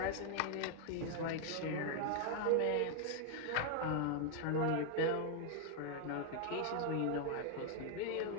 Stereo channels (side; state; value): both; different; correlation 0.00